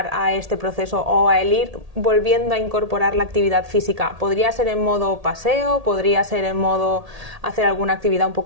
a este proceso o a el ir volviendo a incorporar la actividad física? ¿Podría ser en modo paseo? ¿Podría ser en modo hacer alguna actividad un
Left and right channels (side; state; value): left; late; 1.8 ms